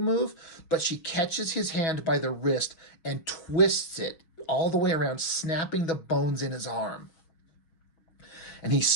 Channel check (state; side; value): late; right; 6.3 ms